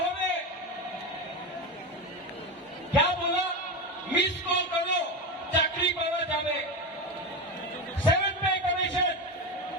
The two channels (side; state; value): both; normal; correlation 0.18